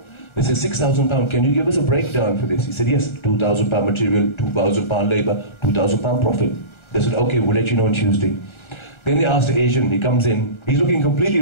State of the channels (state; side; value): late; right; 1.3 ms